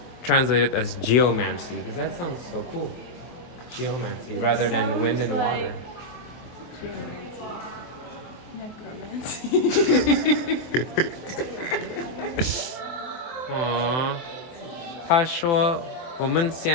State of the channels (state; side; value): late; right; 24 ms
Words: translated as geomancy, because that sounds so cool. Geomancy rather than wind and water. Geomancy. Necromancy. Aww. 他说我